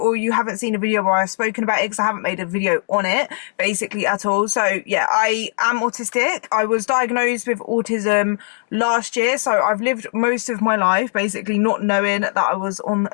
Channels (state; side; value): silent; right; digital silence